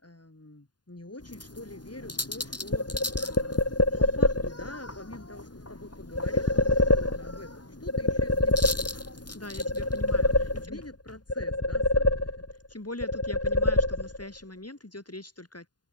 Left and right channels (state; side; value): late; right; 0.70 ms